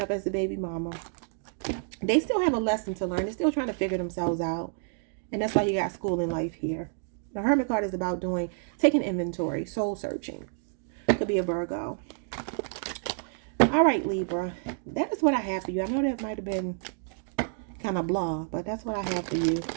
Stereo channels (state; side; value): silent; left; digital silence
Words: up as the baby mama. They still have a lesson to learn. They're still trying to figure themselves out. And that's why you got school in life here. The Hermit card is about taking inventory, soul searching. Could be a Virgo. All right, Libra. That is what I have for you. I know that might have been kind of blah, but that's what I have for you.